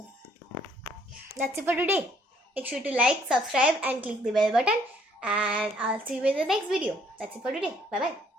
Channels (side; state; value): both; normal; correlation 0.64